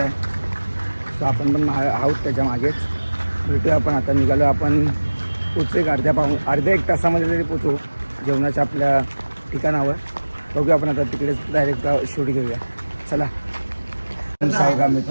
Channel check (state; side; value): inverted; both; correlation -1.00